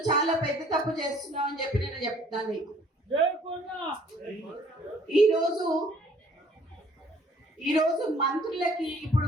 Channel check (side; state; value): both; normal; correlation 0.58